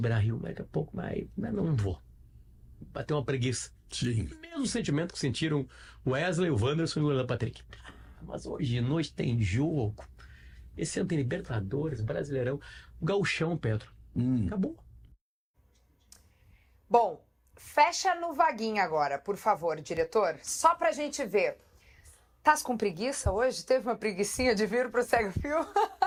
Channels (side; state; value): both; identical; correlation 1.00